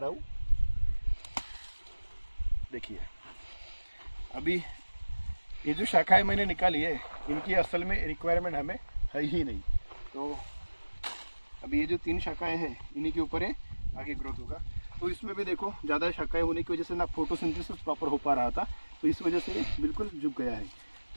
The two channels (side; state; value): both; inverted; correlation -1.00